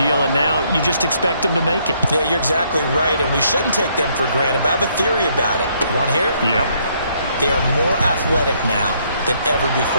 and now you just expect them to make it. Yeah, you're exactly right, and we shouldn't take them for granted, but I have a theory about it. You want to hear it? Yep. They are more athletic now than ever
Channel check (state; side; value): inverted; both; correlation -0.69